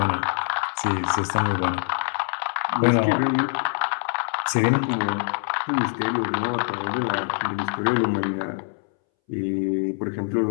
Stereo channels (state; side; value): silent; right; 62 dB below the other